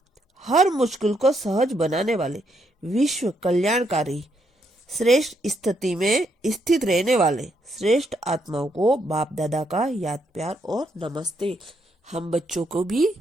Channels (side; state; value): both; normal; correlation 0.76